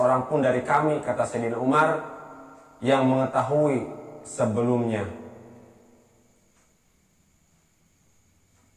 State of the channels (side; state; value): both; identical; correlation 1.00